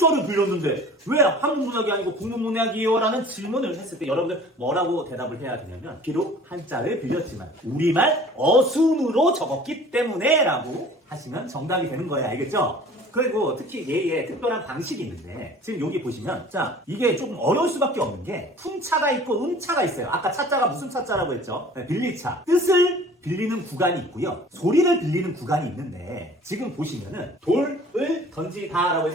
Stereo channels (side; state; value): both; normal; correlation 0.47